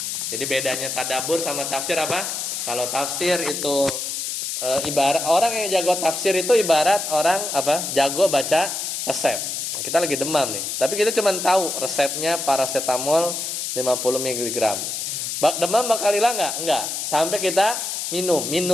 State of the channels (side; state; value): left; noise; hiss, 3 dB below the sound